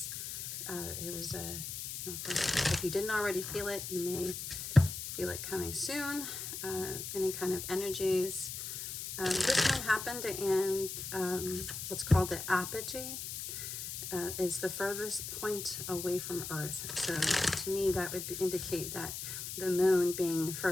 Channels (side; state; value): left; noise; hiss, 6 dB below the sound